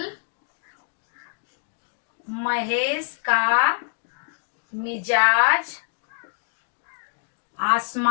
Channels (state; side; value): silent; right; 57 dB below the other